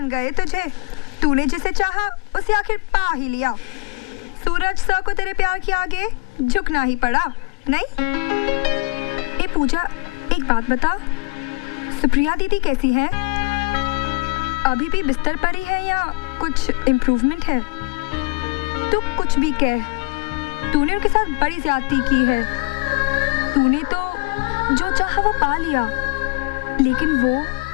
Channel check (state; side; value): quieter; right; 25.3 dB